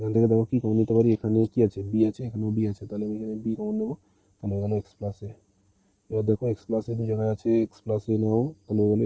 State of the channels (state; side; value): identical; both; correlation 1.00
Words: থেকে দেখো কি কমন নিতে পারি, এখানে কি আছে বি আছে, এখানেও বি আছে, তাহলে আমি এখানে বি কমন নেবো, তাহলে হয়ে গেল এক্স প্লাস এ। এবার দেখো এক্স প্লাস এ দু জায়গায় আছে, এক্স প্লাস এ নাও, তাহলে হয়ে গেল